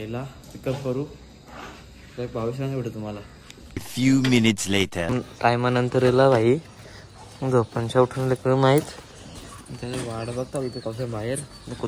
पिकअप करू. भावीस भेटू तुम्हाला. few minutes later. टायमानंतर येला भाई झोपांच्या उठून लेकर माहीत त्याने वाट बघता इथे कसं बाहेर.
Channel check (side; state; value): both; identical; correlation 1.00